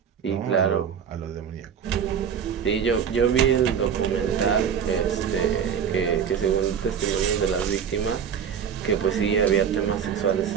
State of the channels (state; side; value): quieter; left; 7.7 dB